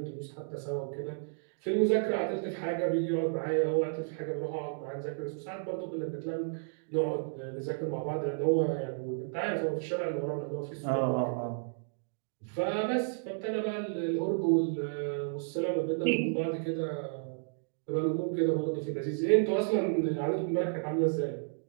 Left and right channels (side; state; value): left; silent; digital silence